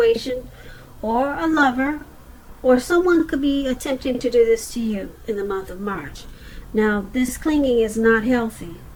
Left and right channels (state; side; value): identical; both; correlation 1.00